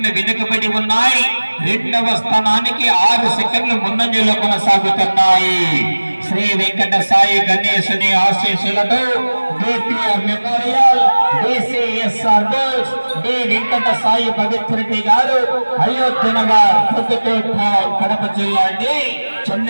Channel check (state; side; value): inverted; both; correlation -1.00